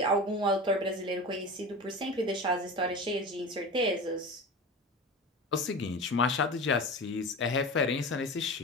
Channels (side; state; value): both; normal; correlation 0.30